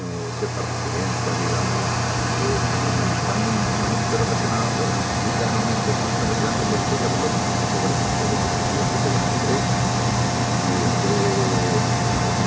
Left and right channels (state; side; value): identical; both; correlation 1.00